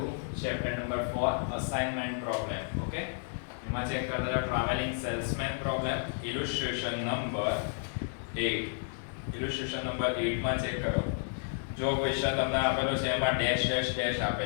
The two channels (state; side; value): silent; right; digital silence